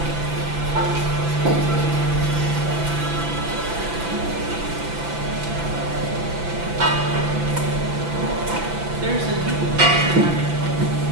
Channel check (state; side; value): late; left; 5.9 ms